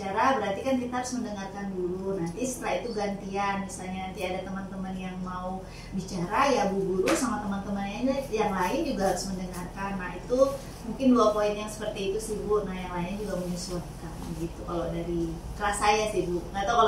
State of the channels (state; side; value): identical; both; correlation 1.00